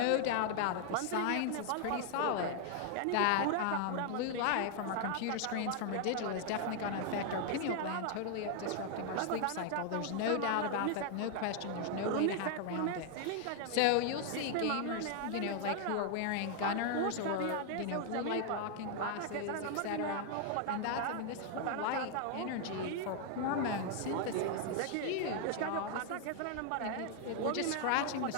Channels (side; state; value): both; different; correlation 0.00